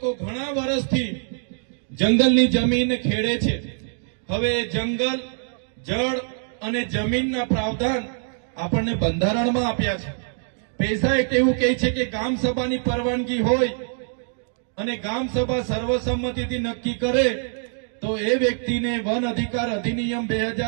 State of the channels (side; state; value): left; silent; 63 dB below the other